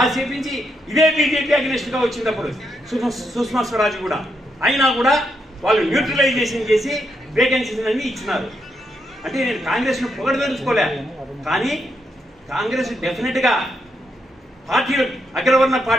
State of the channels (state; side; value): normal; both; correlation 0.80